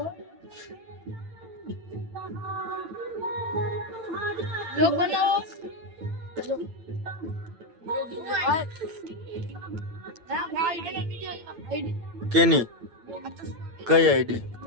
લોક બનાવો. કેની? કઈ આઈડી?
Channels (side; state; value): left; late; 8.9 ms